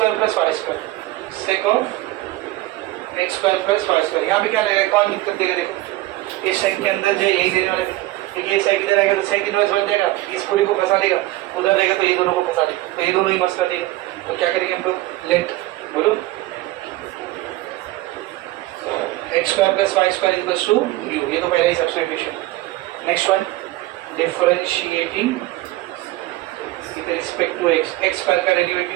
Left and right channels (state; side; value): quieter; left; 17.8 dB